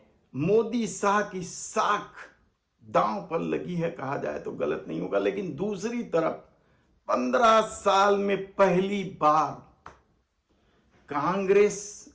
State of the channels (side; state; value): both; identical; correlation 1.00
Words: मोदी शाह की साख दांव पर लगी है, कहा जाए तो गलत नहीं होगा। लेकिन दूसरी तरफ 15 साल में पहली बार कांग्रेस